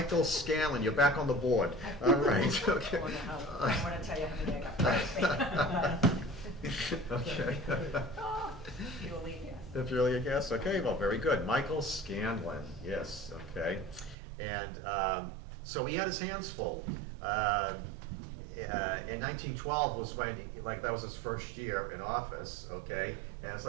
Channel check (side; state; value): left; drops out; at 14.2 s